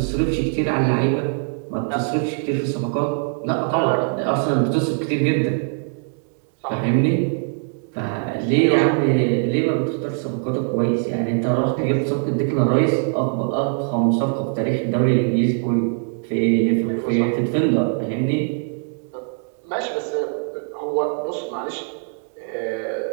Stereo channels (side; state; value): left; silent; 56 dB below the other